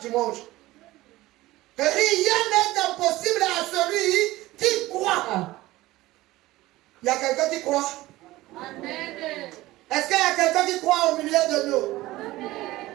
Rien n'est impossible à celui qui croit. Il y a quelqu'un qui croit? Amen. Est-ce qu'il y a quelqu'un qui croit au milieu de nous? Amen.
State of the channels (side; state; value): left; quieter; 17.8 dB